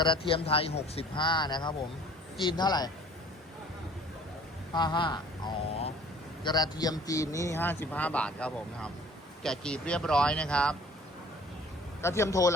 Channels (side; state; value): both; normal; correlation 0.51